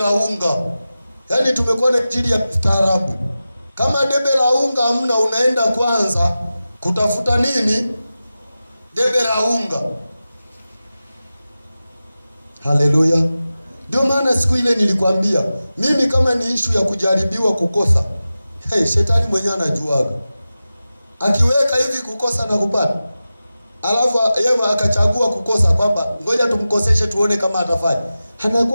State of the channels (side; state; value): both; inverted; correlation -0.94